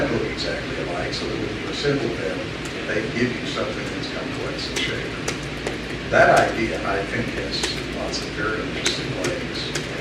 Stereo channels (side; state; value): both; identical; correlation 1.00